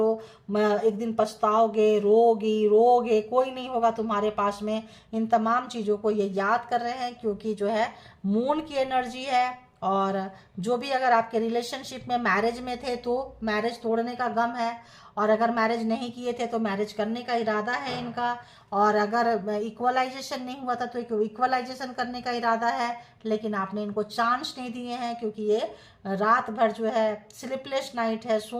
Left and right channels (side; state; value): both; identical; correlation 1.00